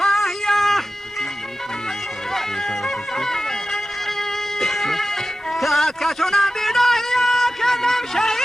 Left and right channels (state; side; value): normal; both; correlation 0.94